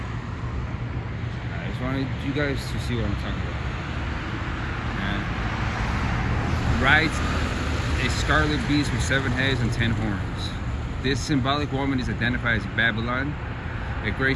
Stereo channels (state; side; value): identical; both; correlation 1.00